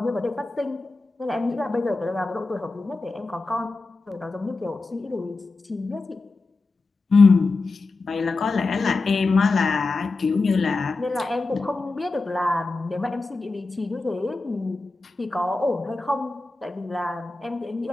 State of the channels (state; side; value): quieter; right; 3.6 dB